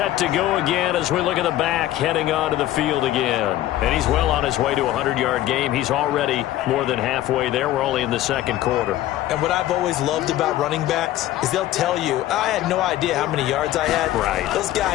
to go again as we look at the back, heading onto the field again. And he's well on his way to a 100-yard game. He's already more than halfway there. We're only in the 2nd quarter. And what I've always loved about running backs is they'll tell you, I had no idea how many yards I had. Right. Those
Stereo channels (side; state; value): right; quieter; 14.1 dB